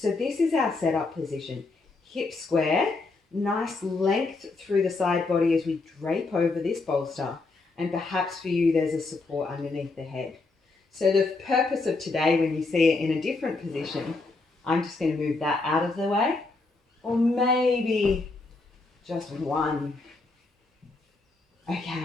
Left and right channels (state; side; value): quieter; right; 3.6 dB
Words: this is our setup position. Hip square, nice length through the side body as we drape over this bolster. And perhaps for you, there's a support underneath the head. So the purpose of today, when you see it in a different position, I'm just going to move that out of the way. Or maybe just one.